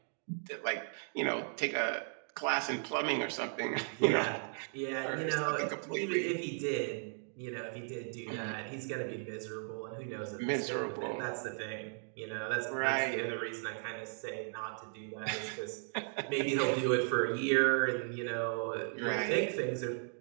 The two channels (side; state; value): left; silent; 54 dB below the other